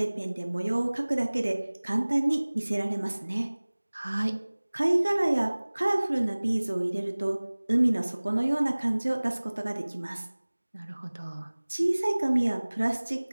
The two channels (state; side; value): inverted; both; correlation -1.00